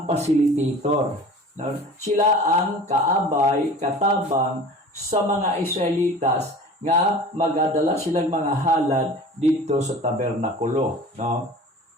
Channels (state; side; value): normal; both; correlation 0.41